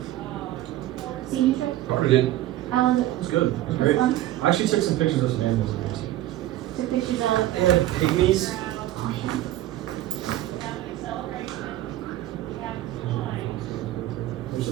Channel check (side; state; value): left; quieter; 14.4 dB